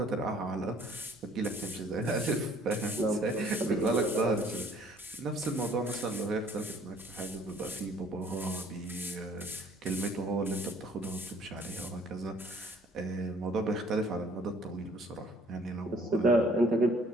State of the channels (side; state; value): both; normal; correlation 0.58